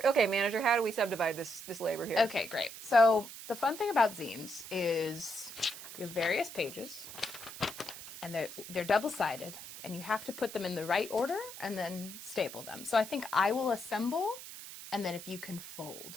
okay, manager. How do we subdivide this labor here? Okay, great. So the fun thing about zines is you have various pages, and they're double-sided, and you have to put them in the right order and then staple them. So I think I will assemble, and then if you can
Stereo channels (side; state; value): right; noise; hiss, 12 dB below the sound